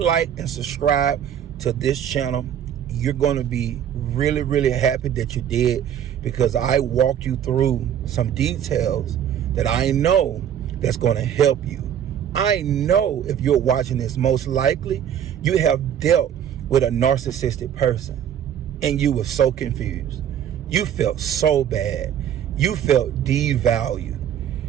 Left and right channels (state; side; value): quieter; left; 9.6 dB